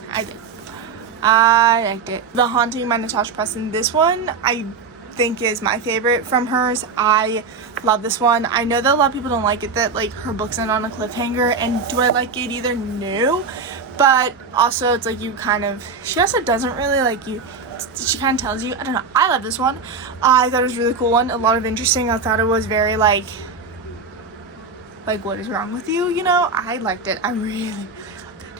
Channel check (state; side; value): quieter; left; 4.8 dB